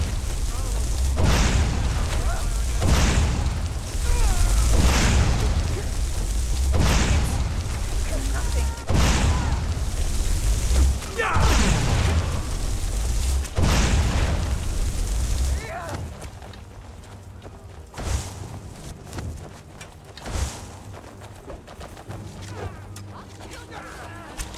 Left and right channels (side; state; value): both; identical; correlation 1.00